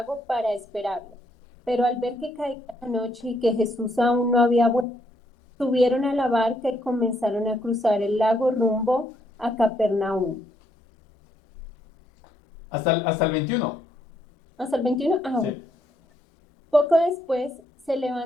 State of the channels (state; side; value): normal; both; correlation 0.73